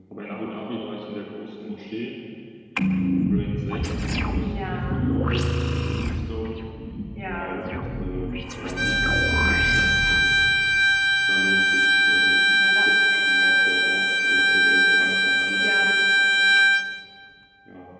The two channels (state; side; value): identical; both; correlation 1.00